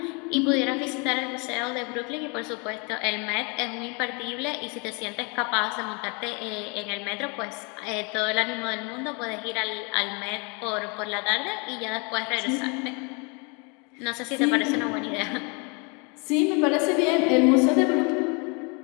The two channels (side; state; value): right; quieter; 32.1 dB